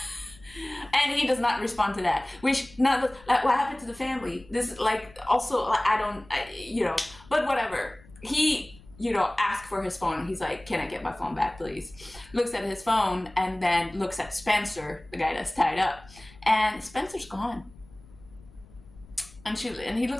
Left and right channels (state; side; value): noise; left; rumble, 23 dB below the sound